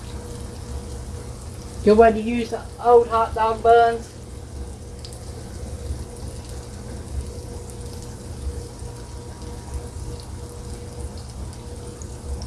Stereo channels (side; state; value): both; identical; correlation 1.00